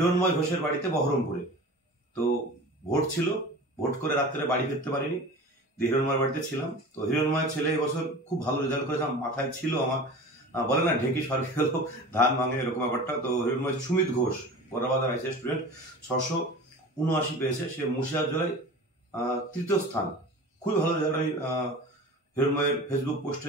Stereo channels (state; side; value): normal; both; correlation 0.37